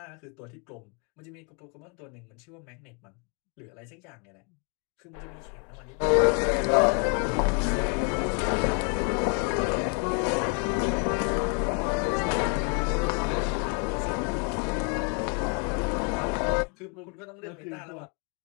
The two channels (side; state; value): right; quieter; 37.8 dB